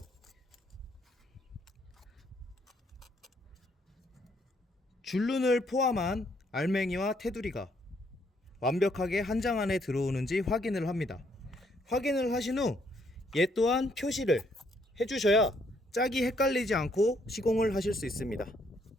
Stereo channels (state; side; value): normal; both; correlation 0.70